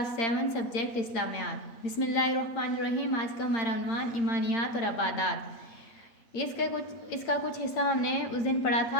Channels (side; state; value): right; late; 8.8 ms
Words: 7 subject Islamiyat. बिस्मिल्लाहिर्रहमानिर्रहीम। आज का हमारा उन्वान ईमानियात और आबादात। इसका कुछ हिस्सा हमने उस दिन पढ़ा